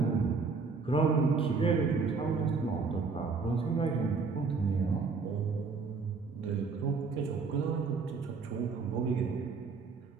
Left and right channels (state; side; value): quieter; left; 4.7 dB